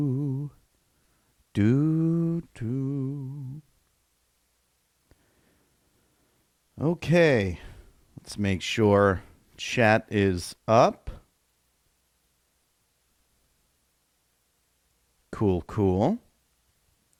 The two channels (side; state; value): both; identical; correlation 1.00